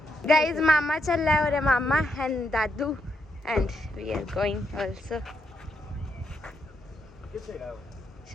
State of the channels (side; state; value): both; normal; correlation 0.79